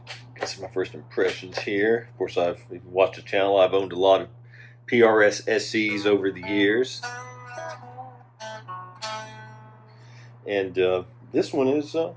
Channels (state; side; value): identical; both; correlation 1.00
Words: that's my first impressions here. Of course, if you've watched the channel, I've owned a lot of PRS SEs over the years. And this one is